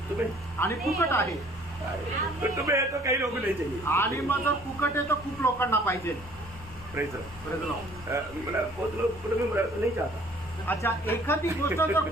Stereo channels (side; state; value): both; normal; correlation 0.56